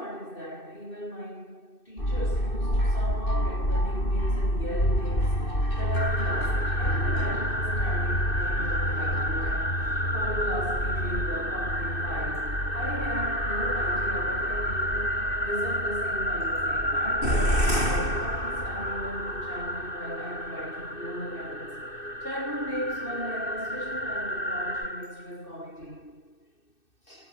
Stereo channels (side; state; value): right; late; 2.6 ms